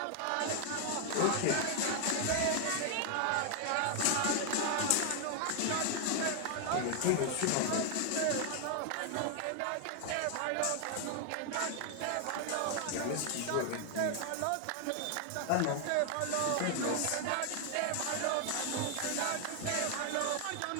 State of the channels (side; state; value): both; different; correlation 0.00